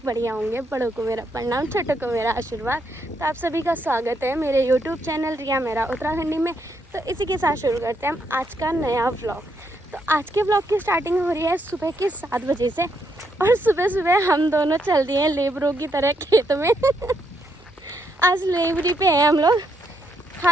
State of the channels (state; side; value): normal; both; correlation 0.77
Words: बढ़िया होंगे। बड़ों को मेरा प्रणाम, छोटों को मेरा आशीर्वाद। तो आप सभी का स्वागत है मेरे यूट्यूब चैनल रिया मेरा उत्तराखंडी में। तो इसी के साथ शुरू करते हैं हम आज का नया व्लॉग। तो आज के व्लॉग की स्टार्टिंग हो रही है सुबह के 7 बजे से। और सुबह सुबह हम दोनों चल दिए हैं लेबरों की तरह खेत में। आज लेबरी पे हैं हम लोग,